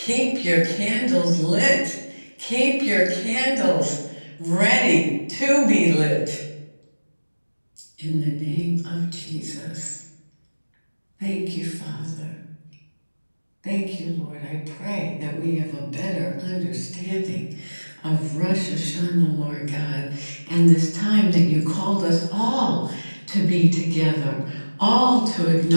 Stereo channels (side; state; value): both; inverted; correlation -1.00